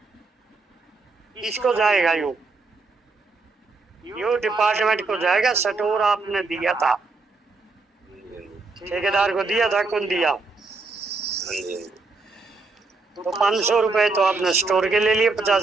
किसको जाएगा यो डिपार्टमेंट को जाएगा। स्टोर आपने दिया था, ठेकेदार को दिया था, कौन दिया? तो 500 रुपए तो आपने स्टोर के ले लिए,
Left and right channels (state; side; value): quieter; left; 3.9 dB